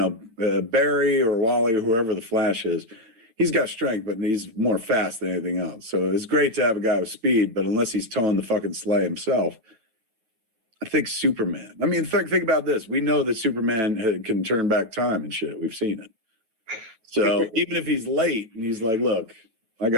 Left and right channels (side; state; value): left; late; 9.0 ms